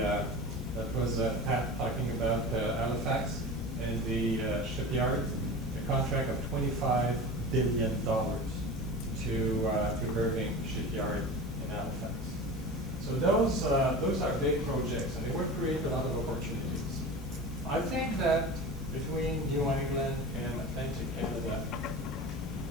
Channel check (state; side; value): normal; both; correlation 0.32